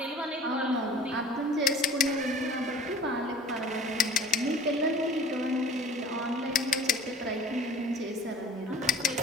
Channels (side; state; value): both; normal; correlation 0.47